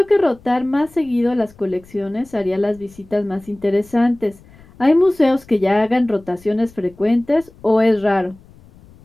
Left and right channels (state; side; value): noise; left; rumble, 25 dB below the sound